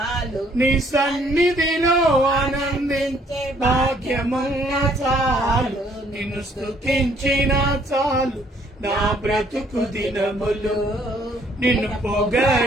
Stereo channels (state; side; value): normal; both; correlation 0.64